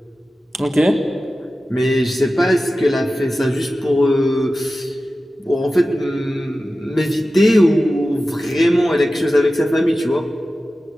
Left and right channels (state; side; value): normal; both; correlation 0.94